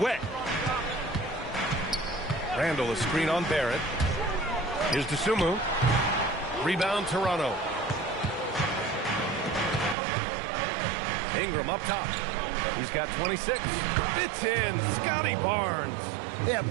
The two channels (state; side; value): drops out; left; at 10.0 s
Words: Randall, a screen on Barrett. Here's Dosunmu. Rebound, Toronto. Ingram up top. He's got 26. Fits in. Scotty Barnes. Yeah,